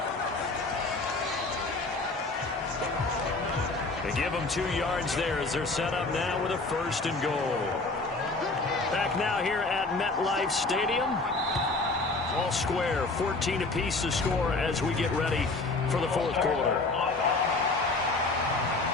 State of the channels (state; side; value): quieter; right; 3.4 dB